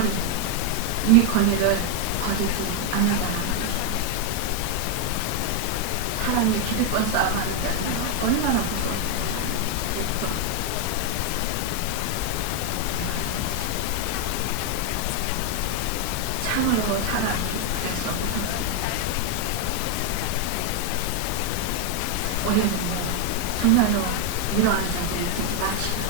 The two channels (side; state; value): both; different; correlation 0.01